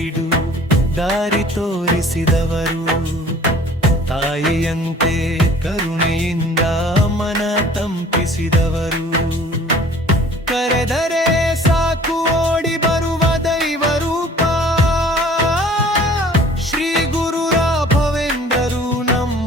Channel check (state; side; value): normal; both; correlation 0.50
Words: ದಾರಿ ತೋರಿಸಿದವರು, ತಾಯಿಯಂತೆ ಕರುಣೆಯಿಂದ ಮನ ತಂಪಿಸಿದವರು. ಕರೆದರೆ ಸಾಕು ಓಡಿ ಬರುವ ದೈವ ರೂಪ ಶ್ರೀ ಗುರು ರಾಘವೇಂದ್ರರು